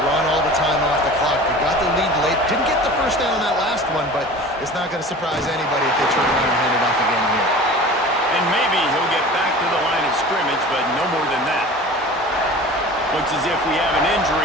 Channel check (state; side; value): normal; both; correlation 0.39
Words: run all the time off the clock. They got the lead late. Didn't get the first down on that last one, but it's not going to surprise anybody if they turn around and hand it off again here. And maybe he'll get back to the line of scrimmage, but no more than that. Looks as if we have an